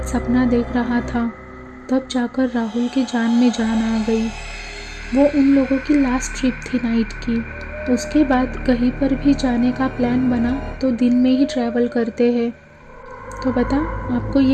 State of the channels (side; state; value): both; identical; correlation 1.00